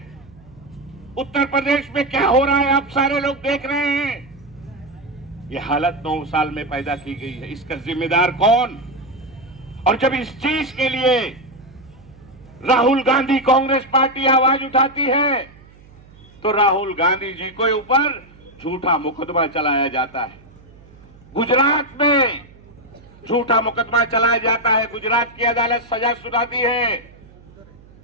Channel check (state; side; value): noise; right; hum, 24 dB below the sound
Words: उत्तर प्रदेश में क्या हो रहा है आप सारे लोग देख रहे हैं। ये हालत 9 साल में पैदा की गई है। इसका जिम्मेदार कौन? और जब इस चीज के लिए राहुल गांधी कांग्रेस पार्टी आवाज उठाती है तो राहुल गांधी जी को ऊपर झूठा मुकदमा चलाया जाता है। गुजरात में झूठा मुकदमा चलाया जाता है। गुजरात की अदालत सजा सुनाती है,